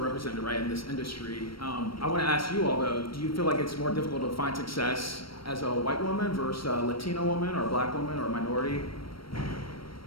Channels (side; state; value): right; late; 0.74 ms